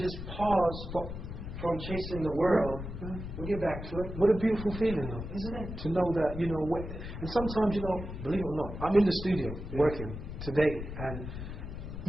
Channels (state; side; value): noise; left; rumble, 8 dB below the sound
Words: pause from chasing the world. We'll get back to it. What a beautiful feeling, though, isn't it? To know that, you know, and sometimes, you know, believe it or not, I'm in the studio working today, and